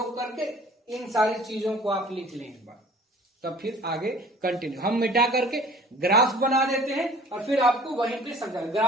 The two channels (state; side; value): normal; both; correlation 0.49